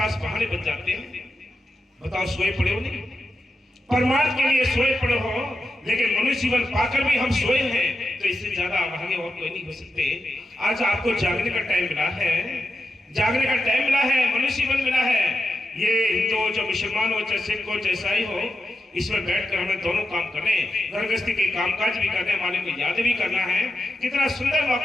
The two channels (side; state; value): both; normal; correlation 0.89